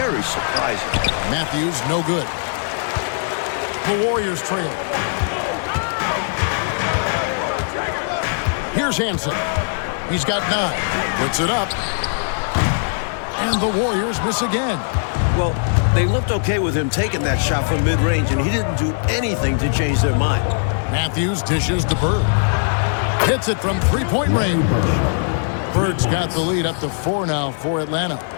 surprising. Matthews, no good. The Warriors trail. Here's Hansen. He's got 9. Puts it up. And the Warriors miss again. Well, they looked okay with him taking that shot from mid-range, and he didn't do anything to change their mind. Matthews dishes to Bird. Hits it from three-point range. Bird's got the lead up to 4 now for Atlanta.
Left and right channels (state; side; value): silent; right; digital silence